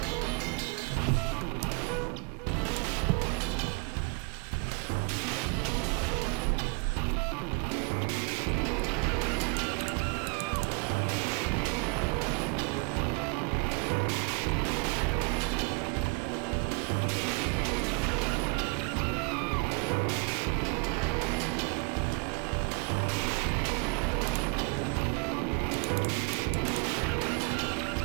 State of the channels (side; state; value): left; quieter; 31.7 dB